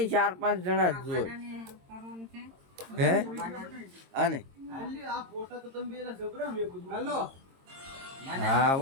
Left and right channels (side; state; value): left; late; 22 ms